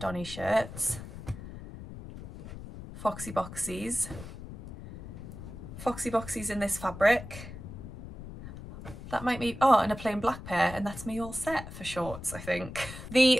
shirts Foxy Boxies. Foxy Boxies in this fabric. That might be, oh, and a plain black pair, and that's me all set for shorts, I think.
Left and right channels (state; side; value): noise; left; rumble, 12 dB below the sound